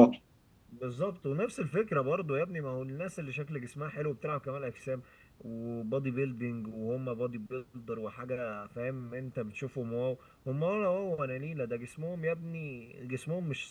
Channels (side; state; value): both; identical; correlation 1.00